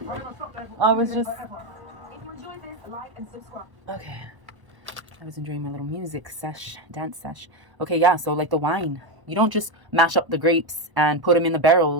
I was just... Okay. I was enjoying my little music sesh, dance sesh. Okay, yeah, so like the wine. You don't just mash up the grapes and put them in the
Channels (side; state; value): left; late; 1.0 ms